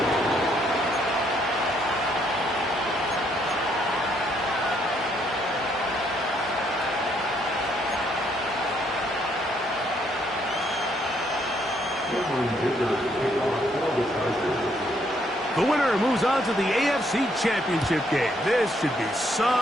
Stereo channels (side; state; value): both; normal; correlation 0.71